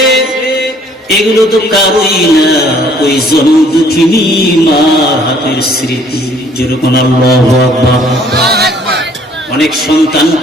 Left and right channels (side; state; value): both; normal; correlation 0.60